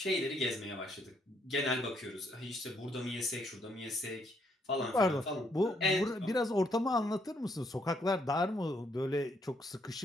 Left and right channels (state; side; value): normal; both; correlation 0.72